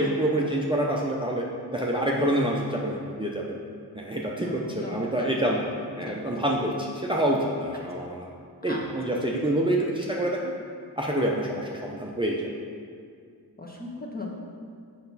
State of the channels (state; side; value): normal; both; correlation 0.33